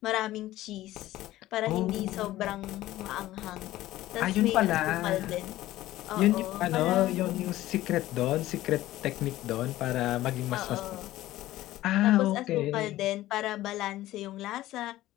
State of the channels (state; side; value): quieter; right; 15.6 dB